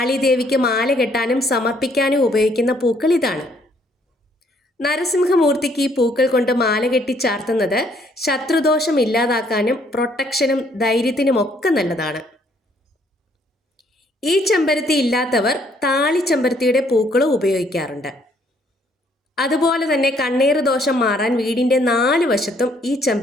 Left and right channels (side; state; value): both; normal; correlation 0.66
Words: മാല കെട്ടാനും സമർപ്പിക്കാനും ഉപയോഗിക്കുന്ന പൂക്കൾ ഇതാണ്. നരസിംഹമൂർത്തിക്ക് ഈ പൂക്കൾ കൊണ്ട് മാല കെട്ടി ചാർത്തുന്നത് ശത്രുദോഷം ഇല്ലാതാക്കാനും പ്രൊട്ടക്ഷനും ധൈര്യത്തിനുമൊക്കെ നല്ലതാണ്. ഈ ചെമ്പരത്തി ഇല്ലാത്തവർ താളിച്ചെമ്പരത്തിയുടെ പൂക്കളും ഉപയോഗിക്കാറുണ്ട്. അതുപോലെ തന്നെ കണ്ണേറ് ദോഷം മാറാൻ വീടിൻ്റെ 4 വശത്തും ഈ